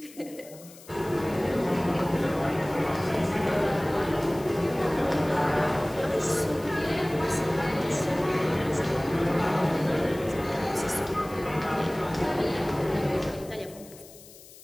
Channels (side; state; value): left; noise; hiss, 20 dB below the sound